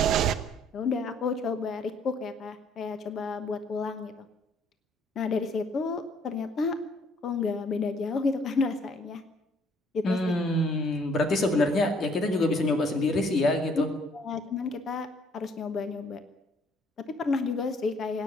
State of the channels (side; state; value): both; normal; correlation 0.62